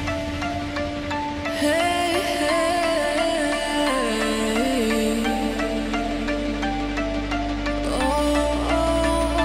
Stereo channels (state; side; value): identical; both; correlation 1.00